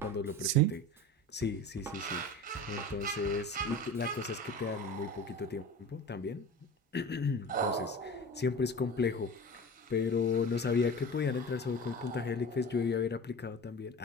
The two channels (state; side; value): normal; both; correlation 0.34